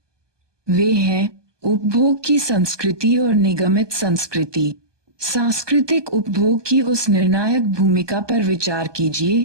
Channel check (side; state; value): left; late; 1.2 ms